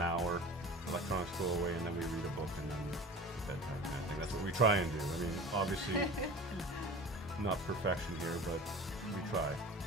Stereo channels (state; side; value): normal; both; correlation 0.38